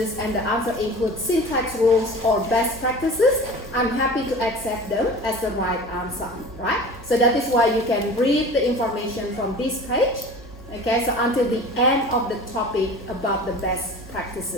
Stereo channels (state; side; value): normal; both; correlation 0.38